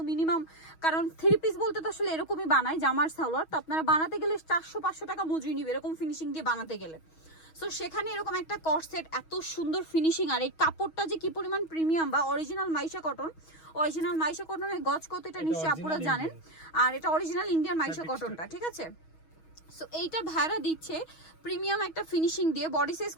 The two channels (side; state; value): right; late; 6.3 ms